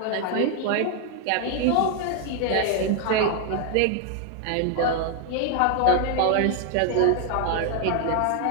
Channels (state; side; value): different; both; correlation 0.00